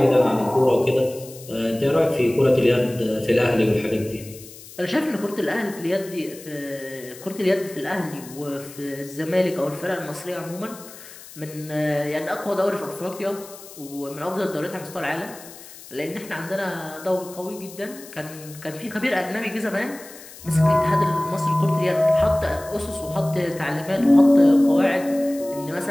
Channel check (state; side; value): noise; left; hiss, 18 dB below the sound